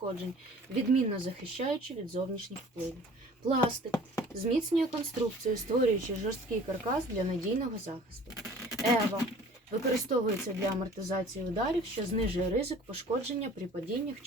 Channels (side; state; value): both; normal; correlation 0.48